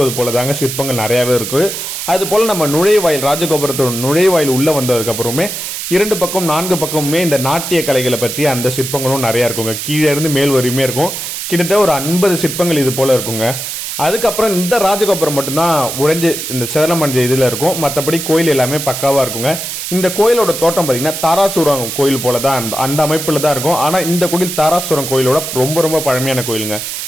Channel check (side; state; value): right; noise; hiss, 6 dB below the sound